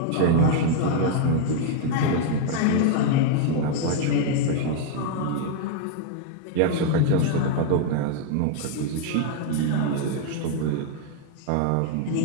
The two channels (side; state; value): both; different; correlation 0.00